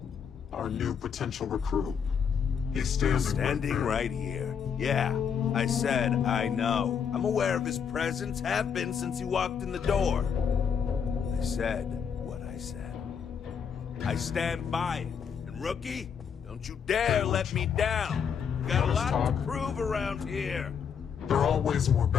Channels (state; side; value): quieter; right; 7.1 dB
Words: Our new potential recruit. He's standing right here. Yeah, I said I know. I'm aware of his presence, have been since he walked in the door. I said what I said. I stand by it. And rookie, don't you dare let me down. Got a lot to prove around here. There are always more